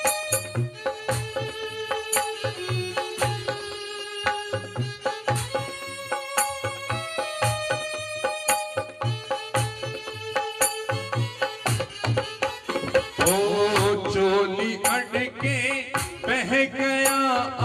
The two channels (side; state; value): both; identical; correlation 1.00